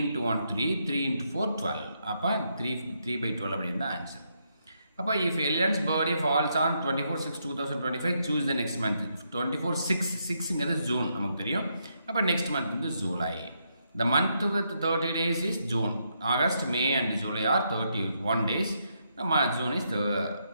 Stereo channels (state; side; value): inverted; both; correlation -0.78